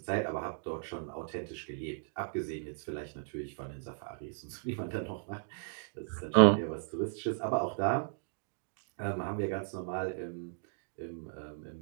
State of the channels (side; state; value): left; silent; digital silence